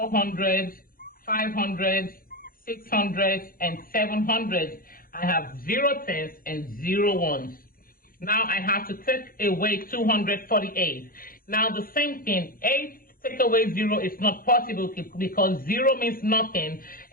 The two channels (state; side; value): late; right; 0.42 ms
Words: 500, 600, and 700. I have 0 tens and 0 ones. Now I have to take away 248. Now the same thing, 8 take away 0 is not possible because 0 means nothing,